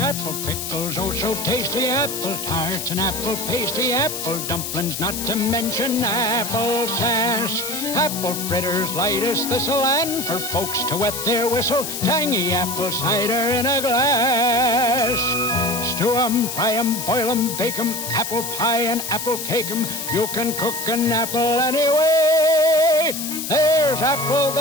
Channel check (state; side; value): noise; left; hiss, 5 dB below the sound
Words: pickles, oh so tasty, apple tarts and apple pasty, apple dumplings, not to mention apple sass. Apple fritters, light as thistle, and for folks to wet their whistle, tangy apple cider in a glass. Stew 'em, fry 'em, boil 'em, bake 'em, apple pie and apple cake 'em. You can cook an apple anyway. There's apple